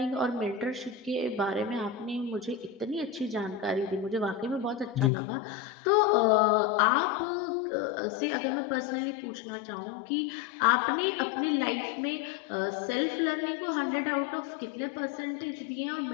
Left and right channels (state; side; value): drops out; right; at 5.1 s